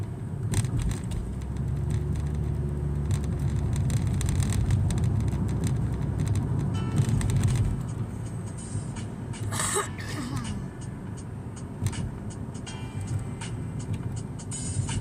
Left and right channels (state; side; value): identical; both; correlation 1.00